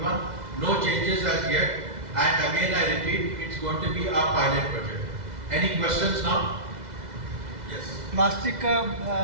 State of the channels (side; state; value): left; late; 2.0 ms